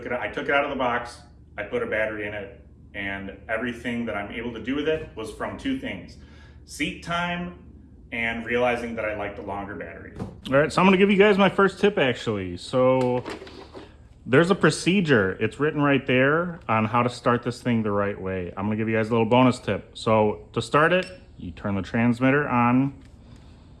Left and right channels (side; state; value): both; identical; correlation 1.00